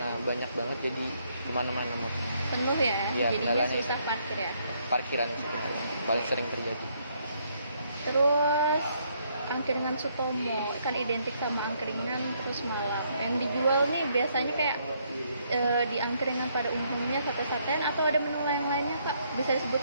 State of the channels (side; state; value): both; inverted; correlation -0.71